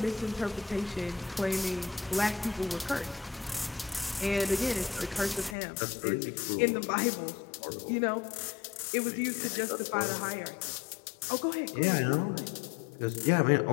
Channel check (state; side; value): drops out; right; at 5.6 s